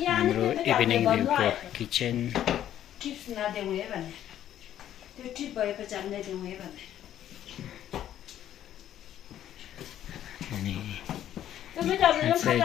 हाम्रो इभिनिङ भ्यूको किचन। टिप्स नदेऊ है भन्ने त्यो टिप भएपछि हामीलाई देऊ है भन्ने अनि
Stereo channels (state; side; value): quieter; right; 11.4 dB